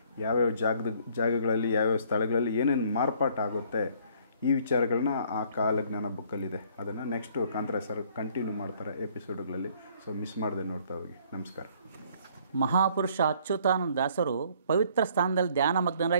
ಯಾವ್ಯಾವ ಜಾಗಗಳಲ್ಲಿ ಯಾವ್ಯಾವ ಸ್ಥಳಗಳಲ್ಲಿ ಏನೇನು ಮಾರ್ಪಾಟಾಗುತ್ತೆ, ಈ ವಿಚಾರಗಳನ್ನ ಆ ಕಾಲಜ್ಞಾನ ಬುಕ್ಕಲ್ಲಿದೆ. ಅದನ್ನು ನೆಕ್ಸ್ಟ್ ಕಾಂತರಾಜ್ ಸರ್ ಕಂಟಿನ್ಯೂ ಮಾಡ್ತಾರೆ ಎಪಿಸೋಡ್ಗಳಲ್ಲಿ. ಸೊ ಮಿಸ್ ಮಾಡದೆ ನೋಡ್ತಾ ಹೋಗಿ. ನಮಸ್ಕಾರ. ಮಹಾಪುರುಷ ಅಚ್ಯುತಾನಂದ ದಾಸರು ಪವಿತ್ರ ಸ್ಥಾನದಲ್ಲಿ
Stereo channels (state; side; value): inverted; both; correlation -0.60